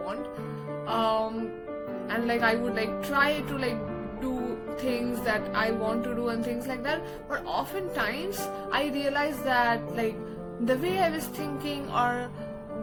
and like I would like try to like do things that I want to do and things like that. But oftentimes I realize that like the way I was thinking or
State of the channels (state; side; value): identical; both; correlation 1.00